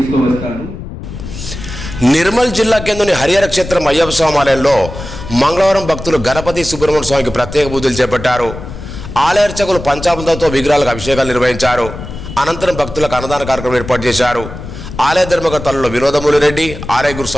నిర్మల్ జిల్లా కేంద్రంలోని హరిహర క్షేత్రం అయ్యప్ప స్వామి ఆలయంలో మంగళవారం భక్తులు గణపతి సుబ్రహ్మణ్య స్వామికి ప్రత్యేక పూజలు చేపట్టారు. ఆలయ అర్చకులు పంచామృతంతో విగ్రహాలకు అభిషేకాలు నిర్వహించారు. అనంతరం భక్తులకు అన్నదాన కార్యక్రమం ఏర్పాటు చేశారు. ఆలయ ధర్మకర్తలలో వినోదమూలి రెడ్డి, ఆలయ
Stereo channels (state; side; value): noise; left; rumble, 10 dB below the sound